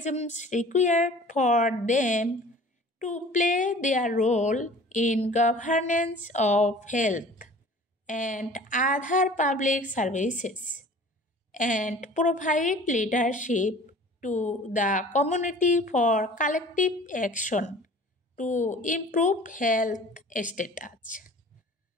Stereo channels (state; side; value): normal; both; correlation 0.46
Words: required for them to play their role in governance of health and other public services and provide leadership to the community for collective action to improve health status।